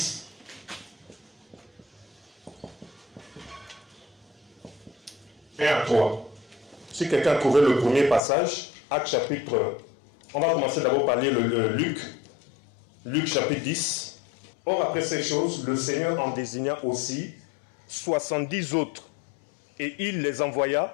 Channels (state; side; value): drops out; right; at 8.2 s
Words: Et à 3. Si quelqu'un a trouvé le premier passage, Actes chapitre... On va commencer d'abord par lire le Luc. Luc chapitre 10. Or après ces choses, le Seigneur en désigna aussi 70 autres. Et il les